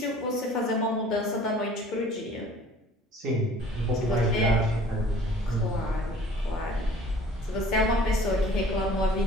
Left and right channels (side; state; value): both; normal; correlation 0.50